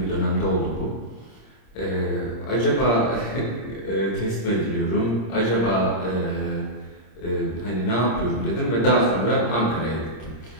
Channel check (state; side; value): late; right; 26 ms